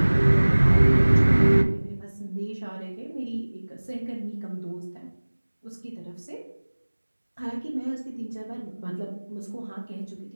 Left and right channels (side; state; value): both; inverted; correlation -1.00